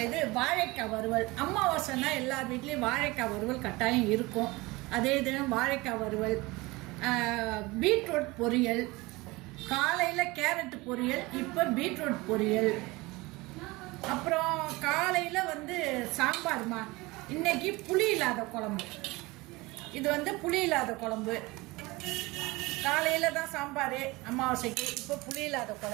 இது வாழைக்காய் வறுவல். அமாவாசைனா எல்லார் வீட்லேயும் வாழைக்காய் வறுவல் கட்டாயம் இருக்கும். அதே தினம் வாழைக்காய் வறுவல், பீட்ரூட் பொரியல், காலையில் கேரட் பொரியல், இப்போ பீட்ரூட் பொரியல். அப்புறம் காலையில் சாம்பார்மா. இன்னைக்கு புளி இல்லாத குழம்பு. இது புளி இல்லாத குழம்பு. காலையில் தான் சாம்பார் அமாவாசைக்கு, இப்போ புளி இல்லாத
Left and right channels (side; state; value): left; quieter; 22.5 dB